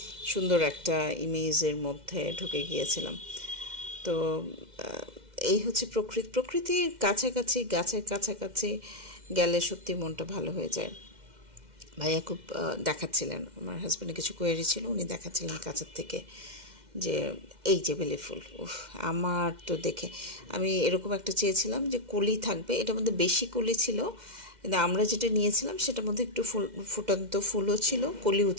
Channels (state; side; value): late; left; 2.1 ms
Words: সুন্দর একটা ইমেজের মধ্যে ঢুকে গিয়েছিলাম। তো এই হচ্ছে প্রকৃতির কাছাকাছি, গাছের কাছাকাছি গেলে সত্যি মনটা ভালো হয়ে যায়। ভাইয়া খুব দেখাচ্ছিলেন, আমার হাজব্যান্ডের কিছু কোয়েরি ছিল, উনি দেখাচ্ছিলেন কাছের থেকে যে এই যে বেলি ফুল, উফ আমার তো দেখে আমি এরকম একটা চেয়েছিলাম যে কলি থাকবে, এটার মধ্যে বেশি কলি ছিল, কিন্তু আমরা যেটা নিয়েছিলাম সেটার মধ্যে একটু ফুটান্ত ফুলও ছিল, কলিও